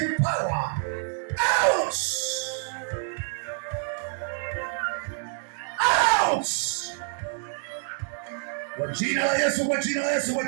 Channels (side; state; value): left; silent; digital silence